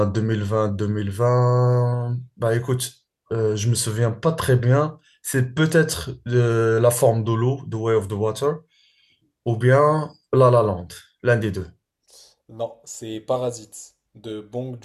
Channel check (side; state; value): both; identical; correlation 1.00